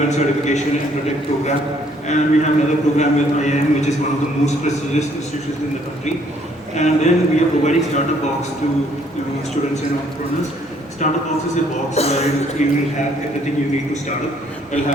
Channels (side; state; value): both; normal; correlation 0.64